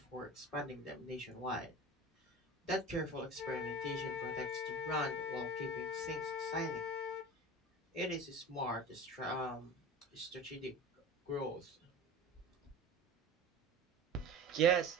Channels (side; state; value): both; normal; correlation 0.34